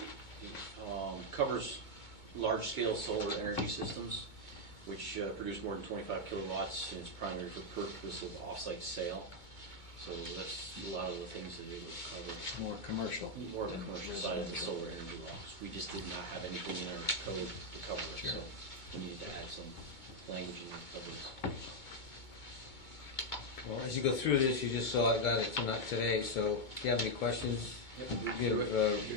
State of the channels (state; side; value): late; right; 2.1 ms